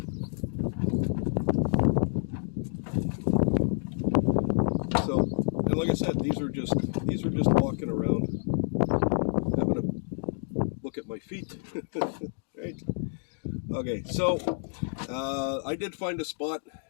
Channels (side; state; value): right; silent; 59 dB below the other